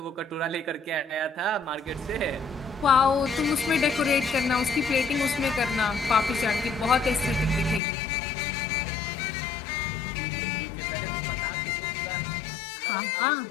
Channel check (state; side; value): drops out; right; at 7.8 s